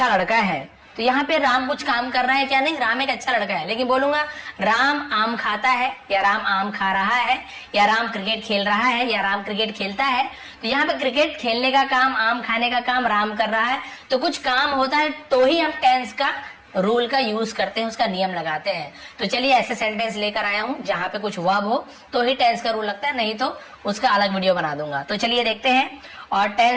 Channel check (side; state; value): both; identical; correlation 1.00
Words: लड़का है, तो यहाँ पे राम कुछ काम कर रहा है क्या? नहीं, राम एक अच्छा लड़का है। लेकिन बोलूंगा राम आम खाता है, या राम आम खा रहा है, या राम क्रिकेट खेल रहा है, या राम क्रिकेट खेलता है, तो यहाँ पे क्रिकेट खेलने का काम, आम खाने का काम राम कर रहा है, तो कुछ काम होता है तो ही हम टेंस का रूल का यूज करते हैं, उसका नियम लगाते हैं। तो चलिए ऐसे सेंटेंस लेकर आया हूं जहां पे कुछ वर्ब हो तो ही टेंस का रूल लगता है, नहीं तो उसका अलग वीडियो बना दूंगा। तो चलिए देखते हैं। और